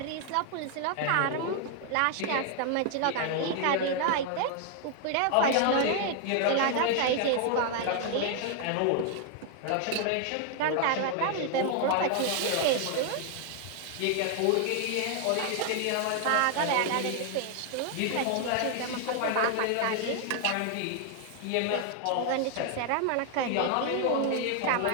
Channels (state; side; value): different; both; correlation 0.00